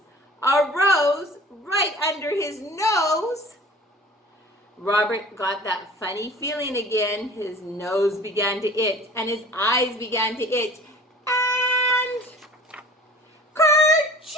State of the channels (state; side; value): normal; both; correlation 0.45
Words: A rose right under his nose. Robert got that funny feeling again. His nose began to itch, and his eyes began to itch. And